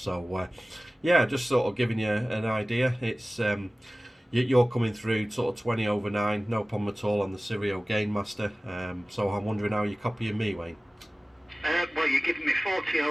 yeah, just sort of giving you an idea. It's you're coming through sort of 20 over 9, no problem at all on the Sirio Gainmaster. So I'm wondering how you're copying me, Wayne. Well, you're giving me 40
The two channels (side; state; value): both; normal; correlation 0.97